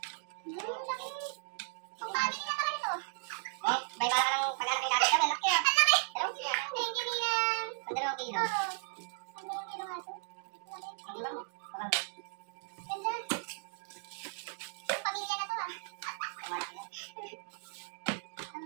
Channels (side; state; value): left; silent; digital silence